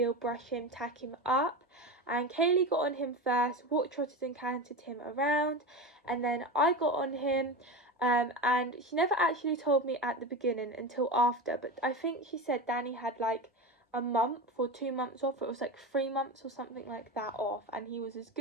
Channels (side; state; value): both; normal; correlation 0.23